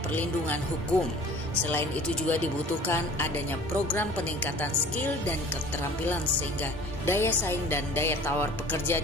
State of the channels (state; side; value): normal; both; correlation 0.47